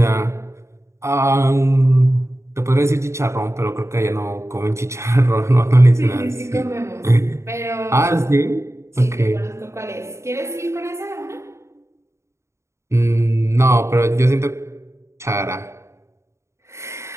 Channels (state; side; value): late; left; 0.14 ms